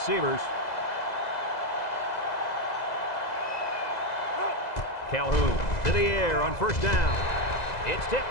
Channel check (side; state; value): right; late; 2.0 ms